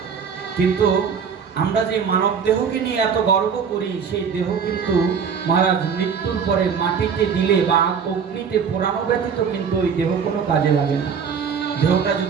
কিন্তু আমরা যে মানব দেহকে নিয়ে এত গর্ব করি, সেই দেহ কিন্তু মহারাজ মৃত্যুর পরে মাটিতে দিলে বা অগ্নিতে পোড়ানো ব্যতীত কিন্তু ওই দেহ কোনো কাজে লাগে না। দেহটা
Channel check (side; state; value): left; quieter; 6.6 dB